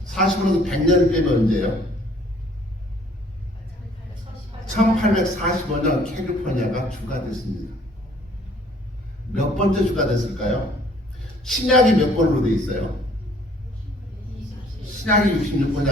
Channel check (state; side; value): normal; both; correlation 0.58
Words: 45년도 100년을 빼면 언제예요? 1845년 캘리포니아가 주가 됐습니다. 몇 번째 주가 됐을까요? 신약이 몇 번으로 되어 있어요? 신약이 66번이